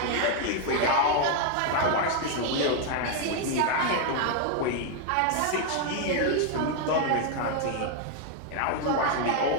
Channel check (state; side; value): different; both; correlation 0.00